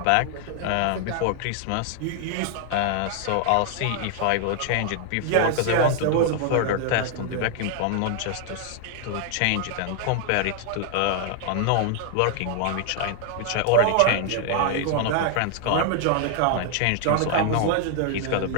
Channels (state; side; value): different; both; correlation 0.00